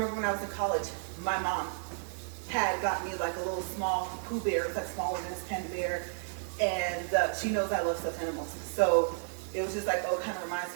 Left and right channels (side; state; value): left; silent; 56 dB below the other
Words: when I was in college, my mom had got me like a little small Pooh Bear. It's like smaller than this panda bear, and she knows I love stuffed animals. So it was just like, oh, it kind of reminds